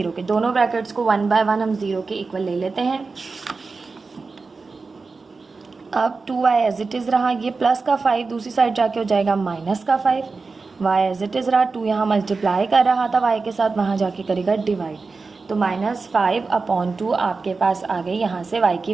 के। दोनों ब्रैकेट्स को 1 बाय 1 हम 0 के इक्वल ले लेते हैं। अब 2y एज इट इज़ रहा, ये प्लस का 5 दूसरी साइड जाके हो जाएगा माइनस का 5। y एज इट इज़ रहा, 2 यहाँ मल्टीप्लाई कर रहा था y के साथ, वहाँ जाके करेगा डिवाइड। तो -5/2 आपके पास आ गई यहाँ से y की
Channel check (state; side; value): quieter; left; 4.2 dB